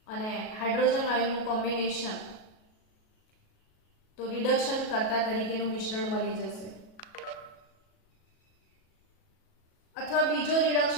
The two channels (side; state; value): right; late; 37 ms